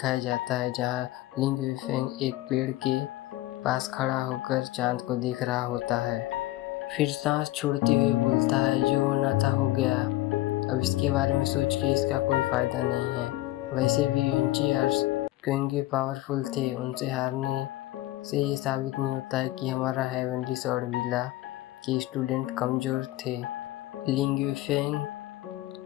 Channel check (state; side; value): quieter; right; 17.0 dB